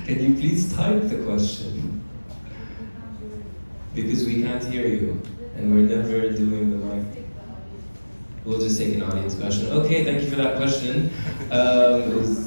Can you please type the question? Because we can't hear you, and we're never doing the mic. We'll just take an audience question. Okay, thank you for that question.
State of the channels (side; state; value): both; inverted; correlation -1.00